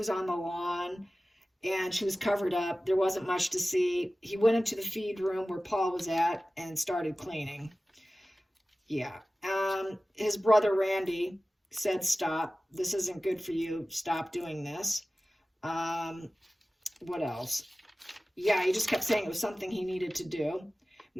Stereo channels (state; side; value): normal; both; correlation 0.96